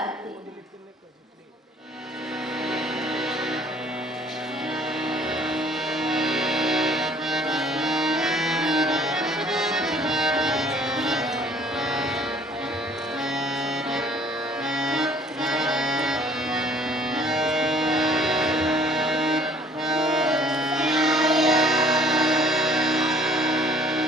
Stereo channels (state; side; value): normal; both; correlation 0.56